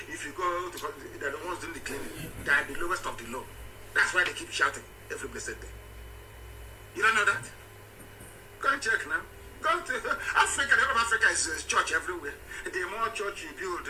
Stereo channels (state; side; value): identical; both; correlation 1.00